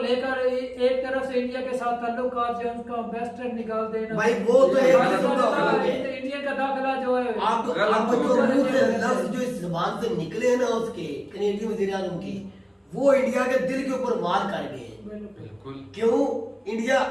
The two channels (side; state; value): both; identical; correlation 1.00